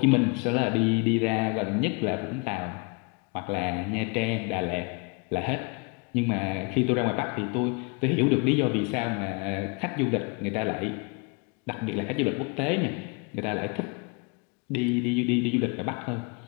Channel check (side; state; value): right; quieter; 31.4 dB